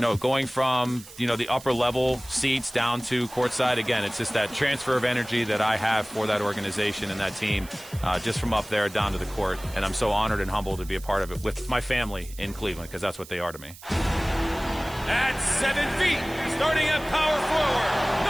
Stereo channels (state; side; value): noise; right; hiss, 18 dB below the sound